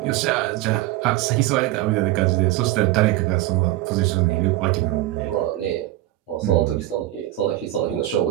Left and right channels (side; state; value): left; quieter; 15.7 dB